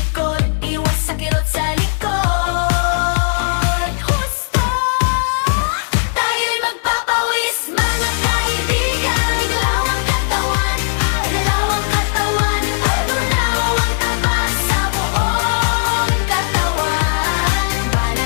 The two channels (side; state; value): right; silent; digital silence